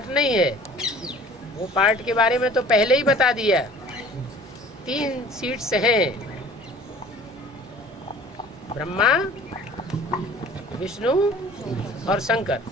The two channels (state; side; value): normal; both; correlation 0.48